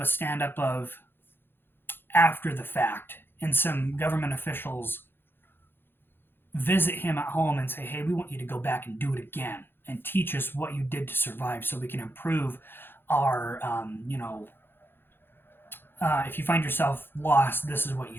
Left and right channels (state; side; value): late; right; 0.10 ms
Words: a stand-up of after the fact, and some government officials visit him at home and say, hey, we want you to go back and do it again and teach us what you did to survive so we can improve our, if you find yourself lost, this is what you